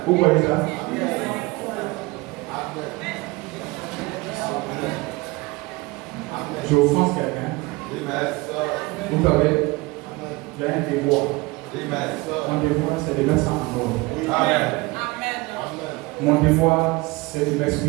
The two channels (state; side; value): quieter; left; 23.4 dB